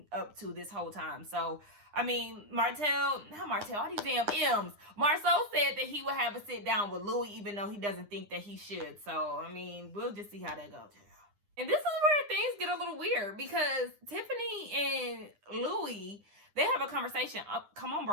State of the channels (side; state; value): left; late; 9.8 ms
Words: up to this whole time. So, I mean, all these damn M's. Marsau said that he would have a sit down with Louie, even though he doesn't think that he should. So, I mean, we'll just see how that goes. And this is where things get a little weird, because Tiffany and Louie, they have a conversation. Come on,